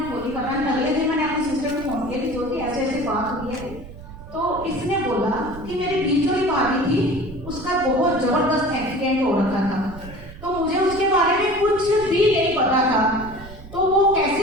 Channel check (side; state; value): right; noise; rumble, 15 dB below the sound